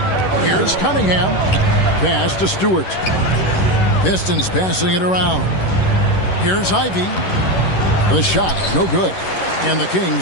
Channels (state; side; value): late; right; 11 ms